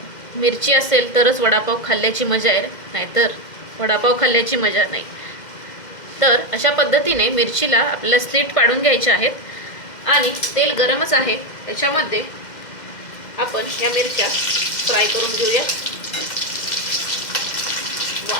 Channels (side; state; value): right; late; 2.1 ms